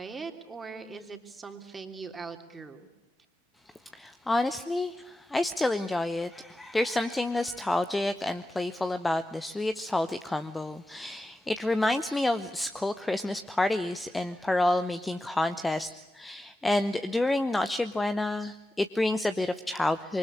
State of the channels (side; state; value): both; normal; correlation 0.92